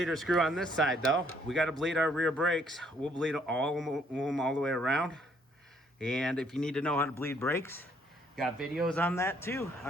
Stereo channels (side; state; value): both; normal; correlation 0.66